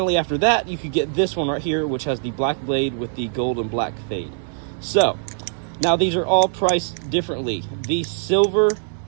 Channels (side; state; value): left; silent; 64 dB below the other